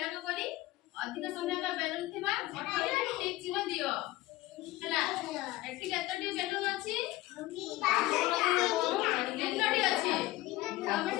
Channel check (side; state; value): right; quieter; 17.6 dB